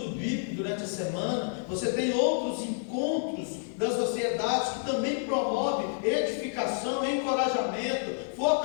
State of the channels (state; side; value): silent; right; digital silence